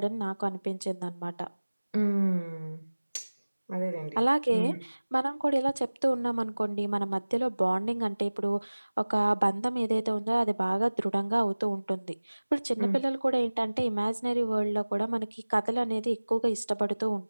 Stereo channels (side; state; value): both; inverted; correlation -1.00